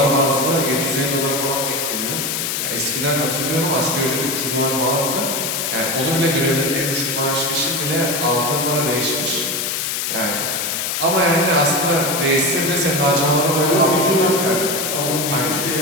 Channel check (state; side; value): noise; left; hiss, 1 dB below the sound